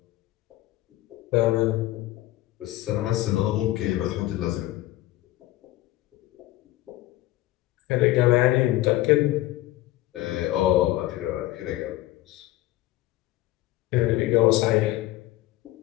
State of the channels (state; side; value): quieter; right; 16.3 dB